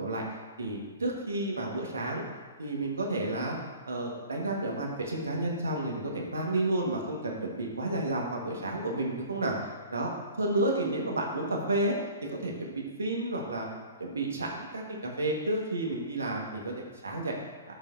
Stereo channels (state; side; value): inverted; both; correlation -0.47